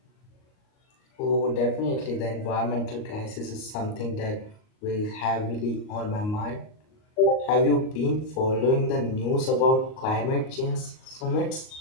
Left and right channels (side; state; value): right; late; 38 ms